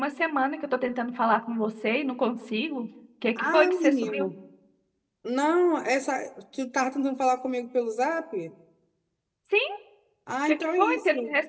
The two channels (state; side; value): identical; both; correlation 1.00